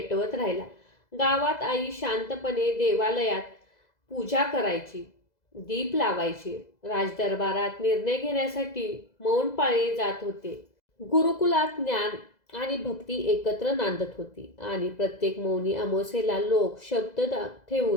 राहिला. गावात आई शांतपणे देवालयात पूजा करायची, दीप लावायची. राजदरबारात निर्णय घेण्यासाठी मौन पाळले जात होते. गुरुकुलात ज्ञान आणि भक्ती एकत्र नांदत होती आणि प्रत्येक मौनी अमावास्येला लोक शब्द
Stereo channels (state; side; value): late; right; 2.0 ms